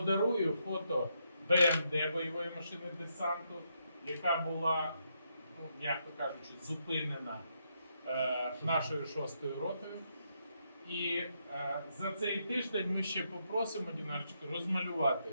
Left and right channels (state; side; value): inverted; both; correlation -0.78